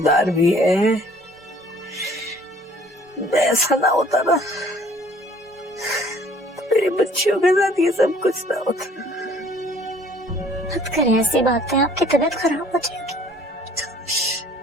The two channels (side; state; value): both; normal; correlation 0.56